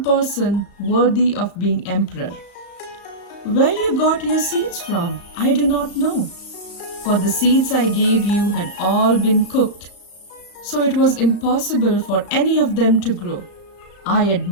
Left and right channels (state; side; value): late; right; 35 ms